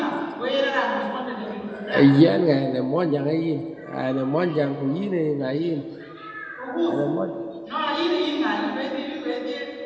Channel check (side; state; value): both; identical; correlation 1.00